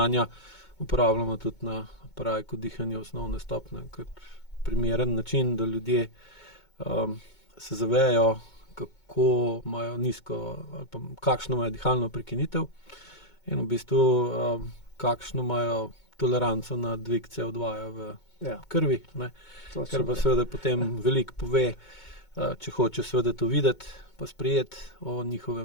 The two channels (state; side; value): late; right; 2.2 ms